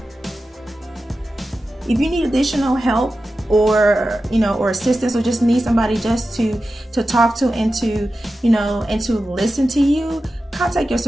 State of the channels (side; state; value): both; normal; correlation 0.93